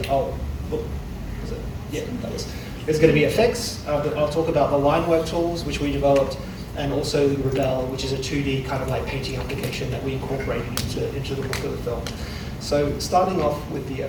There's going to be effects. I'll talk about the line work tools, which we developed, and also Rebel, which is a 2D kind of like painting application that we incorporated into the look of the film. So starting off with the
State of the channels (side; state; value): both; identical; correlation 1.00